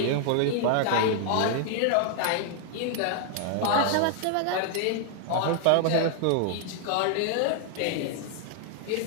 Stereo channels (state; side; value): different; both; correlation 0.00